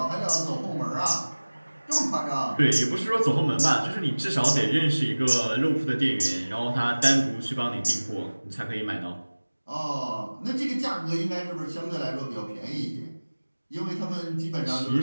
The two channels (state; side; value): inverted; both; correlation -1.00